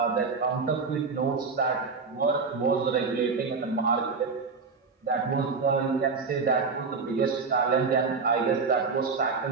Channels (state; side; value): quieter; left; 4.8 dB